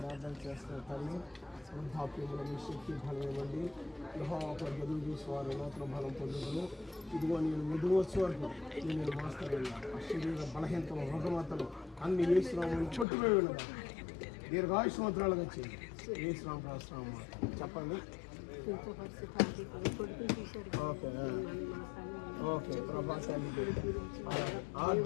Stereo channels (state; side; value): drops out; right; at 13.1 s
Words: చేస్తున్న తల్లి వృద్ధాప్యముల మీ శక్తి బలం ఇవ్వండి. యెహోవాపై ఎదురు చూసేవారు నూతన బలం పొందుదును. ఇదిగో నేను మెదుగు వచ్చే వరకు నేను మాస్తాను. ఆ శరీర బలహీనతలు, రుగ్మతలు అన్ని యేసునామమున చుట్టుపోయి వెళ్ళగా దీర్ఘాయుష్మంత్రాలుగా వచ్చి యేసునామ రాస్తున్నాం. చెప్పండి. ఓకే ఓకే ప్రభాసానికి